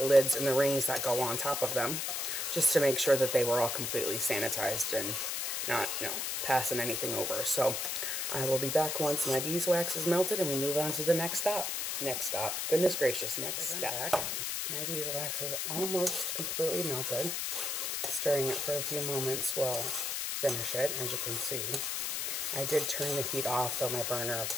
and the rings that go on top of them, just to make sure that they were all completely sanitized and not, you know, passing anything over. So I will be back once my beeswax is melted and we move on to the next stop. Next stop. Goodness gracious, next step. My beeswax is almost completely melted. Stirring it for a few moments will finish it, as you can see. I did turn the heat off, though my burner, of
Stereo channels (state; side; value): noise; left; hiss, 1 dB below the sound